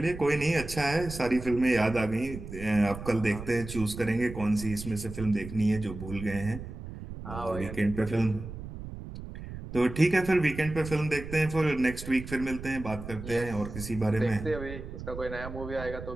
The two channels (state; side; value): noise; right; rumble, 10 dB below the sound